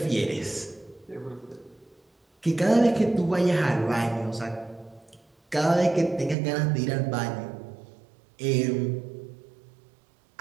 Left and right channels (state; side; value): drops out; left; at 6.4 s